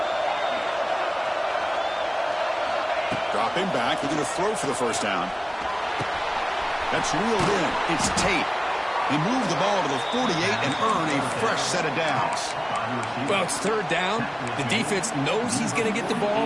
Dropping back, they're going to throw for the first down. That's reeled in. It's Tate. He moved the ball to the 48 and earned a fresh set of downs. Well, it's 3rd down. The defense knows he's going to get the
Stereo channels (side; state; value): both; identical; correlation 1.00